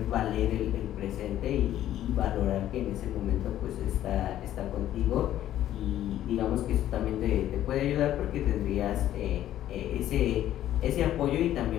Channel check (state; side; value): quieter; right; 12.4 dB